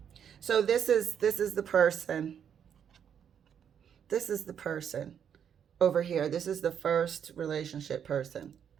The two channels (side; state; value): left; quieter; 8.3 dB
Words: So this is the person. This is the person over here. This is the first relationship person